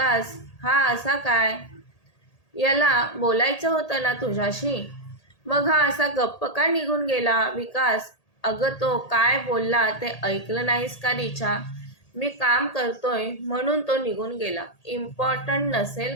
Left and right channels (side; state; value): right; late; 1.8 ms